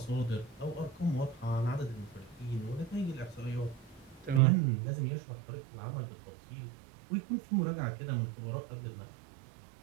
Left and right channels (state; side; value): drops out; left; at 4.4 s